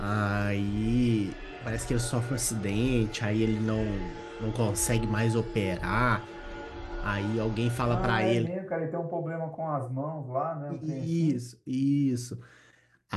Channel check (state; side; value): identical; both; correlation 1.00